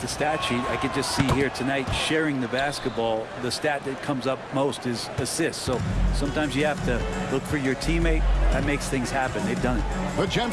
stat sheet, I could just see here tonight sharing the basketball. The stat that comes up most is assists. So sometimes you have to look for your teammate. That makes things happen. They've done it.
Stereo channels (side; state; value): both; identical; correlation 1.00